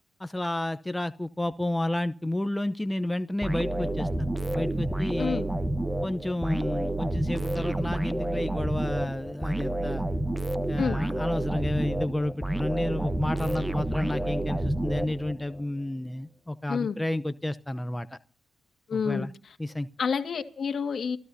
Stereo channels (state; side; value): normal; both; correlation 0.95